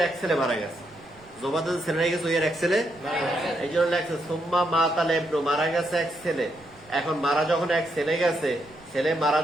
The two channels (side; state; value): right; noise; rumble, 27 dB below the sound